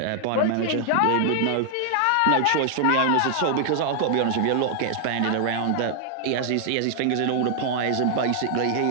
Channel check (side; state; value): both; different; correlation 0.00